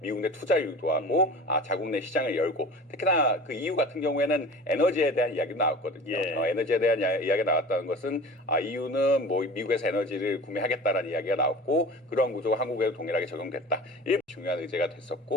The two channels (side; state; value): both; normal; correlation 0.38